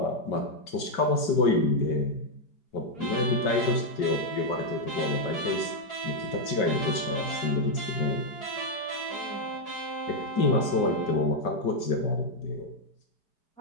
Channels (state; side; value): late; right; 5.3 ms